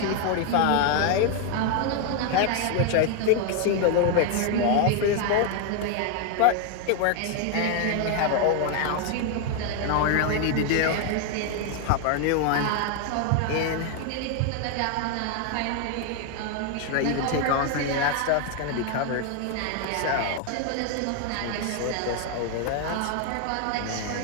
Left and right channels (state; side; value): different; both; correlation 0.01